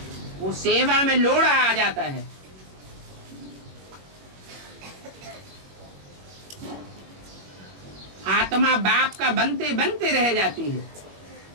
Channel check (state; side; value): late; left; 21 ms